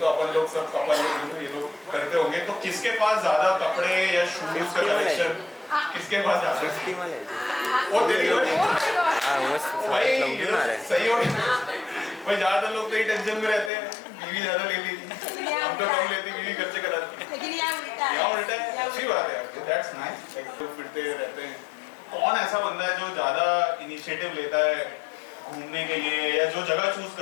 अपन लोग सब कपल लोग ये लोग करते होंगे, तो किसके पास ज्यादा कपड़े या शूज का कलेक्शन, किसके पास ज्यादा? वो दे दियो भाई, सही हो भाई। ज्यादातर लोग तो ये टेंशन में रहते हैं, बीवी ज्यादा ले ली, हम तो कम लेती, बीवी खर्चे कराती। यहाँ उल्टा है, अच्छी बात है, दैट्स नाइस। तो फिरते रहते हैं। कौन ऐसा बंदा है जो ज्यादा इनिशिएटिव लेता है घूमने के लिए, या जो जगह चूज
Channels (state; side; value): drops out; right; at 13.7 s